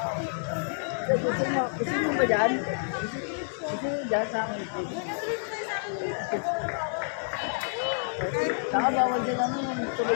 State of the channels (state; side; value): silent; right; digital silence